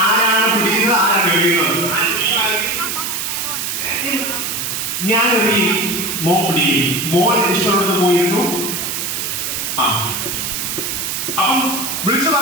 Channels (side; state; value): right; noise; hiss, 3 dB below the sound